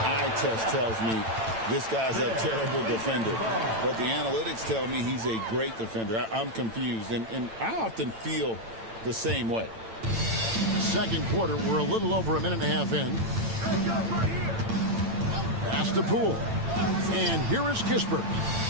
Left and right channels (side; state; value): left; late; 8.9 ms